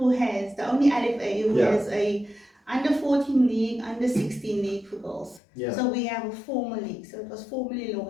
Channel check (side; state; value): right; drops out; at 5.4 s